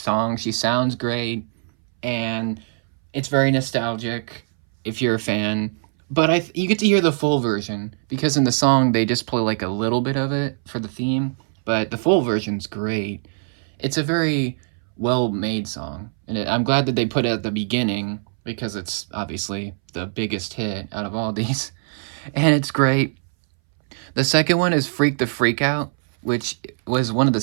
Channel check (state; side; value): silent; left; 63 dB below the other